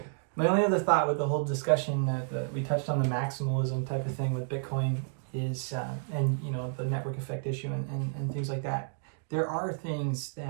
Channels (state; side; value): silent; left; digital silence